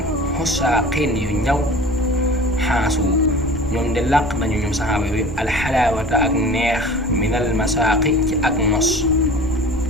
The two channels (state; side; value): noise; right; rumble, 13 dB below the sound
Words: xusaa xeen yu ñaw xaasu ñoom de làq nañu ñoom saxaaba yooyu alxalaawata ak neex minal masaaqi ci ak nos